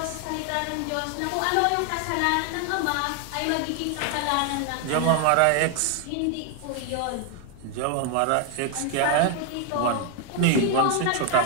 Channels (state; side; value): different; both; correlation 0.00